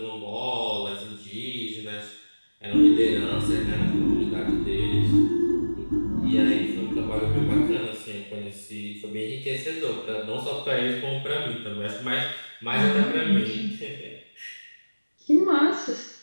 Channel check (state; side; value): inverted; both; correlation -1.00